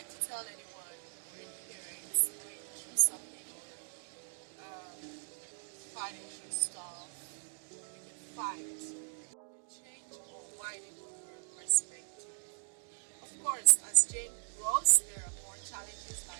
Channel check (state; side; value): silent; left; digital silence